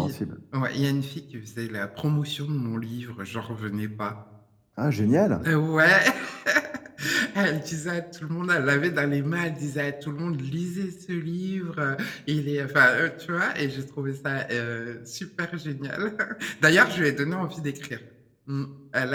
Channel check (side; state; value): both; identical; correlation 1.00